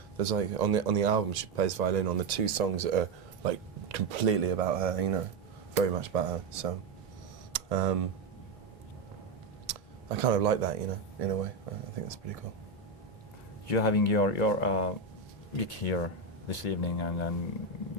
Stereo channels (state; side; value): quieter; left; 4.0 dB